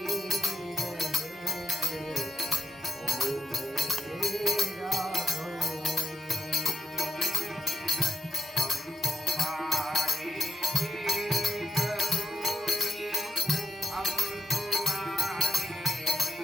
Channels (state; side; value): normal; both; correlation 0.81